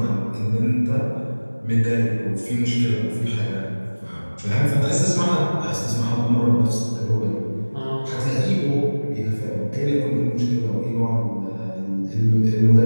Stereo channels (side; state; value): both; inverted; correlation -1.00